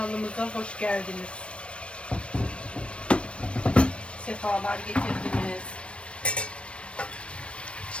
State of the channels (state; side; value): late; right; 0.060 ms